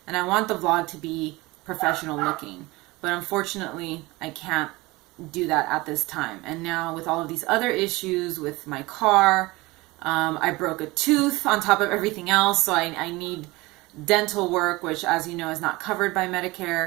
and I want the vlog to be professional looking. But unfortunately, I can't do that at this time. And now with all of these other issues with my car, I broke a tooth on top of everything else, so I need dental work, which, as you know, is not covered by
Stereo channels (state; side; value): quieter; left; 21.7 dB